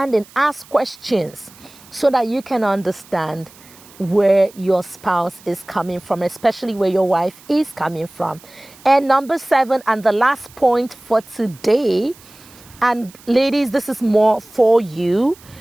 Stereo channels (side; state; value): right; noise; hiss, 24 dB below the sound